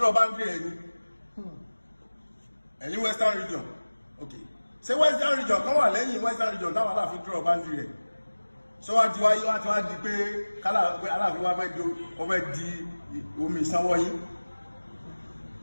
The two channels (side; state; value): both; inverted; correlation -1.00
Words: boundary ẹ̀ ni any western region. Okay, ṣé western region kan wà lẹ́yìn western region táwọn Aláàfin draw boundary ẹ̀ so wá ti wá di pé Aláàfin wá fẹ́ di omi ìsanwó yín